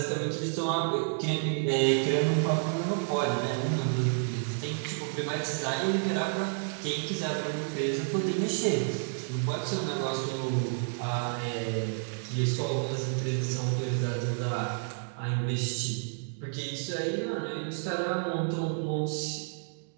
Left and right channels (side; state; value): left; silent; digital silence